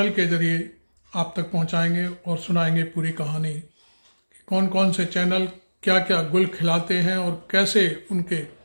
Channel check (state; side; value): inverted; both; correlation -1.00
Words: के ज़रिए आप तक पहुंचाएंगे और सुनाएंगे पूरी कहानी कि कौन कौन से चैनल क्या क्या गुल खिलाते हैं और कैसे उनके